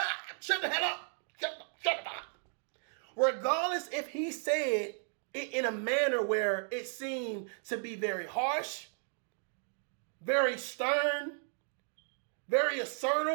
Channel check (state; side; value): silent; left; 55 dB below the other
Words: the hell up. Shut up. Regardless if he said it in a manner where it seemed to be very harsh, very stern, very